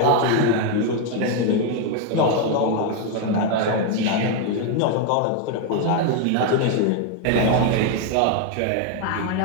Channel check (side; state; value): both; different; correlation 0.01